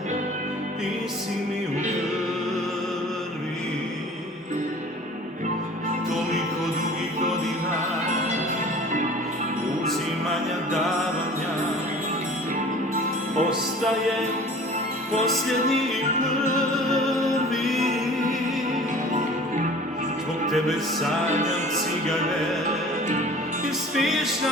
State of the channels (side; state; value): both; normal; correlation 0.45